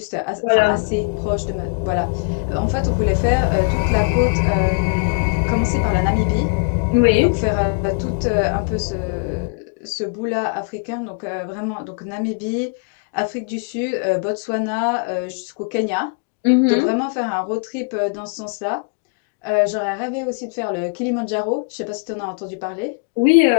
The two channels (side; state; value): right; quieter; 36.3 dB